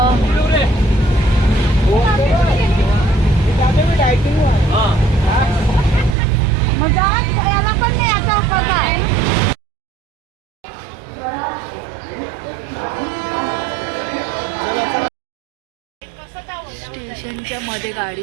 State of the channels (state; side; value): drops out; left; at 6.2 s